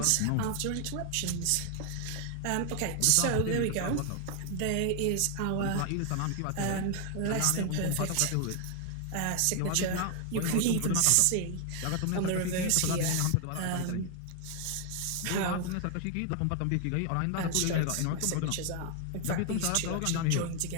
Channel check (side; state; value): both; different; correlation 0.00